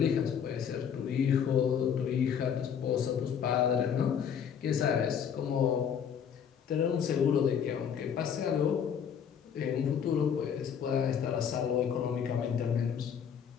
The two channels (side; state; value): right; quieter; 7.9 dB